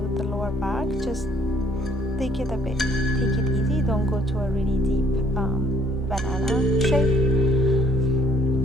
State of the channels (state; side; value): normal; both; correlation 0.63